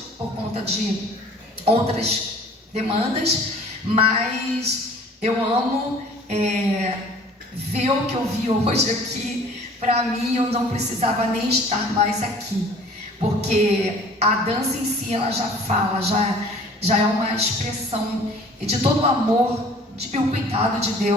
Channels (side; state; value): both; normal; correlation 0.50